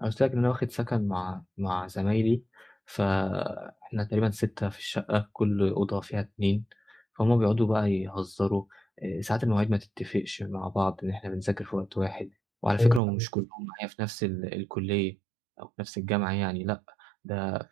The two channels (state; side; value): drops out; left; at 13.0 s